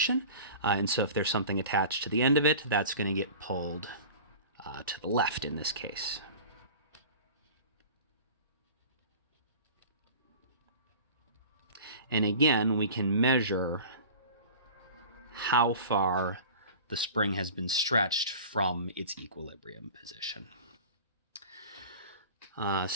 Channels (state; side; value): inverted; both; correlation -0.38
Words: And so if there's something attached to the end of it, that's going to get pulled to the left in this case. And again, we can measure how far the spring has been stretched from its equilibrium position.